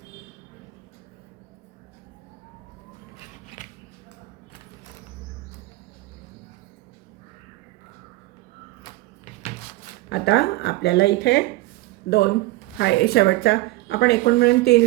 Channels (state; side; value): quieter; left; 19.2 dB